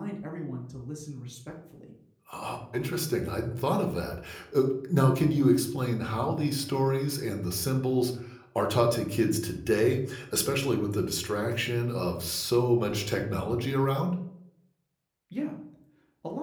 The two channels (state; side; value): identical; both; correlation 1.00